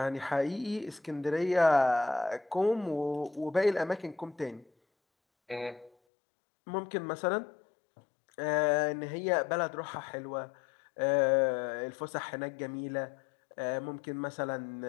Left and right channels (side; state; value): right; drops out; at 5.9 s